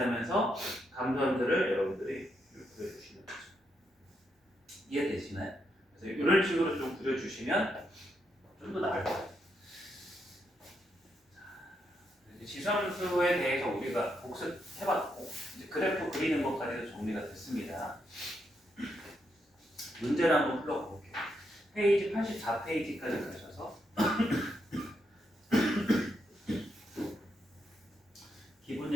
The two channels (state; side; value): normal; both; correlation 0.80